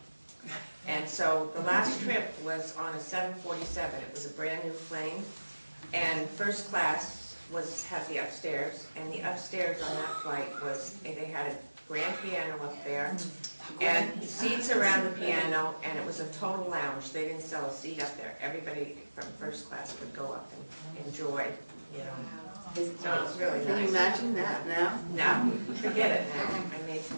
And so the last trip was on a 747. It was a brand new plane, and first class had the upstairs, and the upstairs on that flight was, they had a grand piano up there, and seats around the piano, and it was a total lounge. They didn't sell a seat up there. Everybody from first class could go up and enjoy, you know. So it was really nice. Can you imagine that now? No, forget it now. I mean,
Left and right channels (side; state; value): both; inverted; correlation -1.00